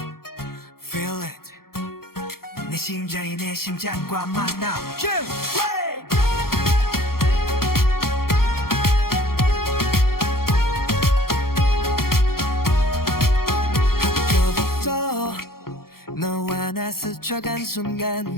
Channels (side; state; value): right; late; 0.93 ms